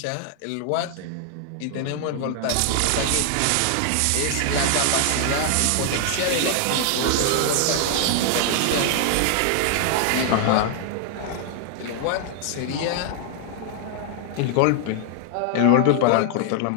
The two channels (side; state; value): both; different; correlation 0.00